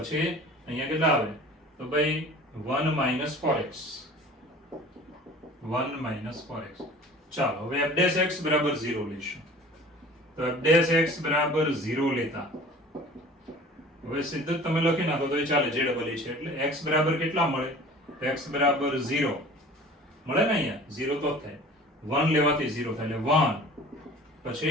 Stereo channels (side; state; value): both; normal; correlation 0.44